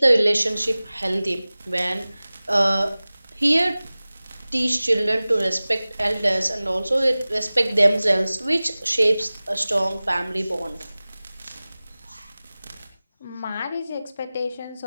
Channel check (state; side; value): inverted; both; correlation -0.98